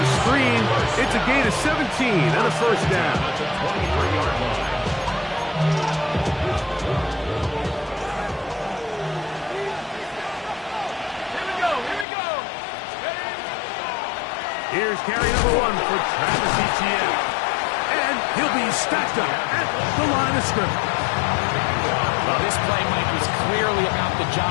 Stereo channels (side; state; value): right; drops out; at 12.1 s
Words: screen. It's a gain of 17 and a 1st down. 23-yard line. Here's carry number 1 for Travis Etienne. And he'll be stacked up at the line of scrimmage. Well, this play, Mike, was clearly about the